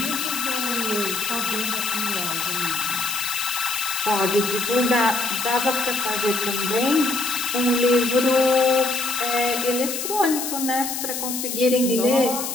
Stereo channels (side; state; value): left; noise; hiss, 4 dB below the sound